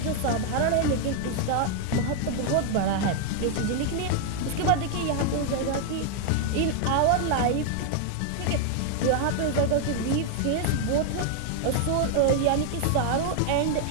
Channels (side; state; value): both; different; correlation 0.00